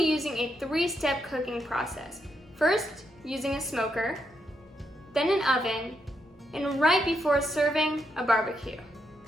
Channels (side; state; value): both; normal; correlation 0.80